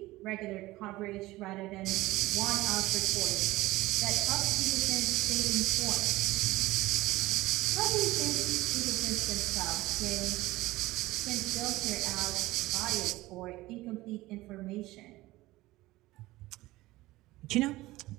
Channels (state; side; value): quieter; left; 18.5 dB